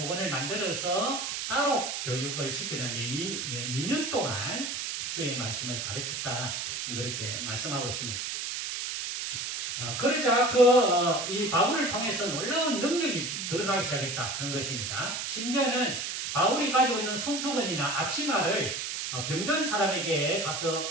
만들어서 따로 교육을 시키는데 2년 동안 주의 말씀을 가르쳤다, 그렇게 말씀하고 있습니다. 그러자 이 바울을 통해서 놀라운 능력이 드러나기 시작했다는 것입니다. 심지어는 바울이 가지고 있는 손수건이나 앞치마를 병든 사람에게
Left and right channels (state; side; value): noise; right; hiss, 3 dB below the sound